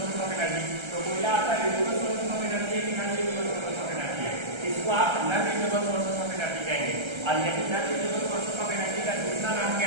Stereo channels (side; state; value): left; late; 1.3 ms